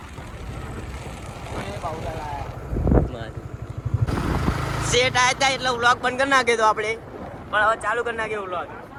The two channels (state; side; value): identical; both; correlation 1.00